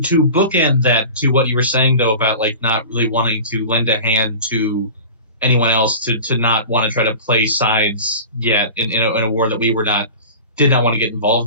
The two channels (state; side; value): inverted; both; correlation -0.36